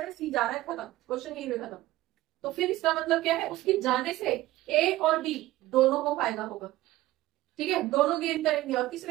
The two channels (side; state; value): left; quieter; 16.6 dB